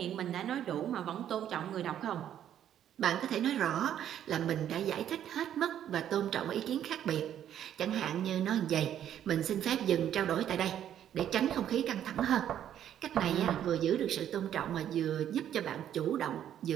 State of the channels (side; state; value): left; quieter; 10.4 dB